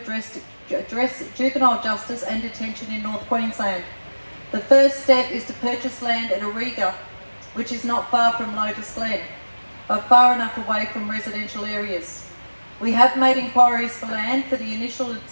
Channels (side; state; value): both; inverted; correlation -1.00